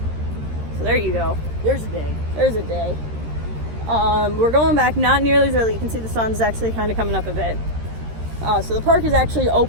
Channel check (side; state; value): left; late; 13 ms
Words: So there you go. There's a day. There's a day. We're going back not nearly as early. You can see the sun's actually kind of coming up a bit. So the park is actually